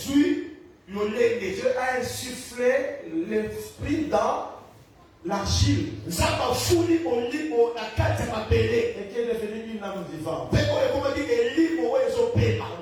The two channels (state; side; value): identical; both; correlation 1.00